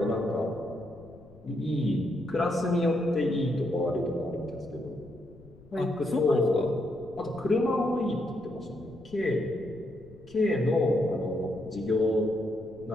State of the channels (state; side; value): noise; left; rumble, 23 dB below the sound